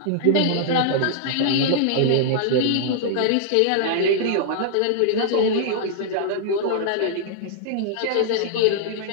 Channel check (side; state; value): both; different; correlation -0.01